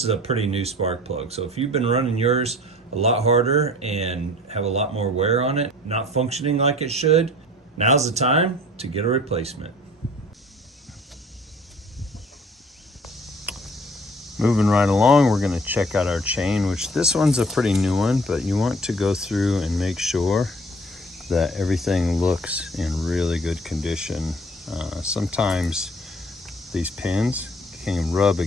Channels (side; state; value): both; normal; correlation 0.50